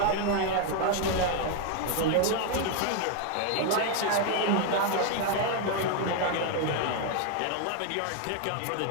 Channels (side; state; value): both; different; correlation 0.01